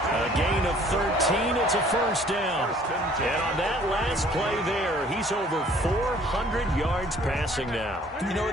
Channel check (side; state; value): both; normal; correlation 0.56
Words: gain of 13. It's a first down. And on that last play there, he's over 400 yards passing now. You know